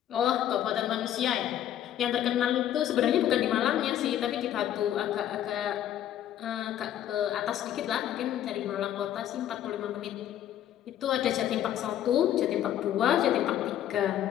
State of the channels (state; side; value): quieter; right; 11.3 dB